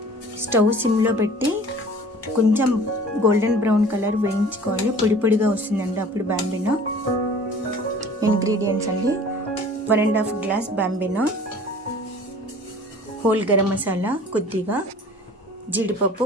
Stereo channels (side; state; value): both; normal; correlation 0.47